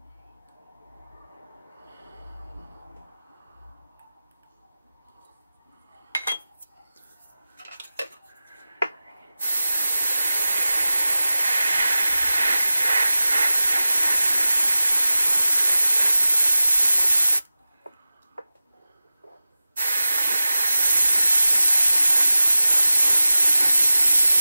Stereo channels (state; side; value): inverted; both; correlation -0.96